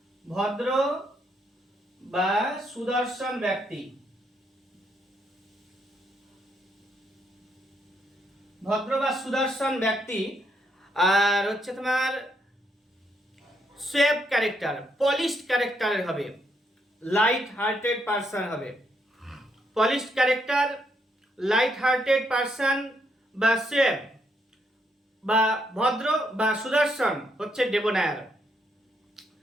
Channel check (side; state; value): both; normal; correlation 0.76